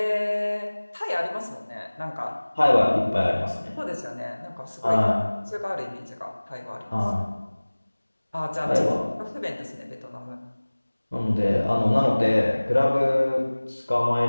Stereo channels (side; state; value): both; inverted; correlation -1.00